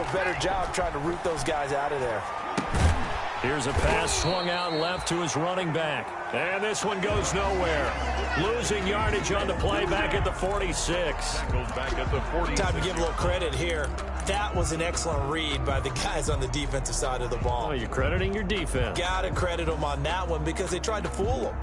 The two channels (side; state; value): both; identical; correlation 1.00